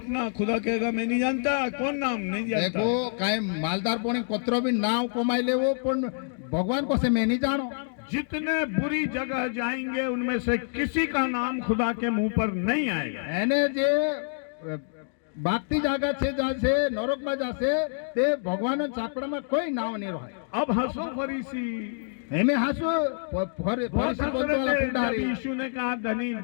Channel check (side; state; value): right; silent; digital silence